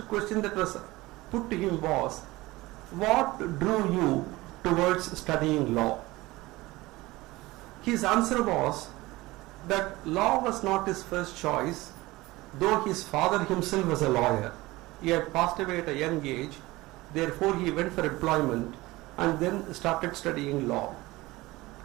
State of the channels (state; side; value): quieter; left; 20.0 dB